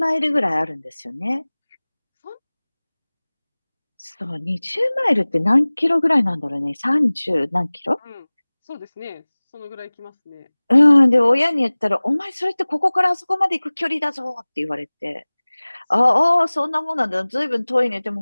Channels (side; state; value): both; inverted; correlation -1.00